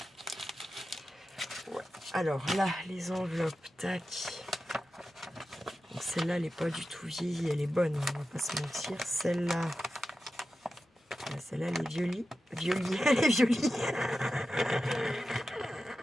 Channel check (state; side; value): normal; both; correlation 0.92